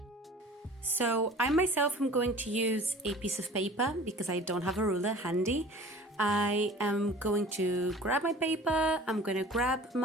So I myself am going to use a piece of paper because I don't have a ruler handy. I am going to grab my paper, I'm going to grab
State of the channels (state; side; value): normal; both; correlation 0.44